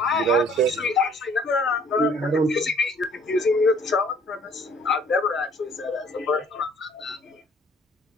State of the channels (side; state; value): both; normal; correlation 0.57